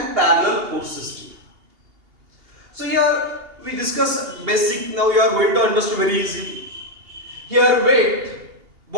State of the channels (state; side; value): late; left; 2.8 ms